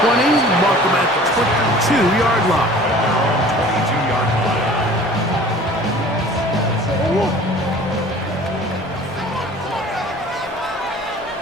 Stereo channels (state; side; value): normal; both; correlation 0.46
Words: mark them at the 22-yard line. 22-yard line.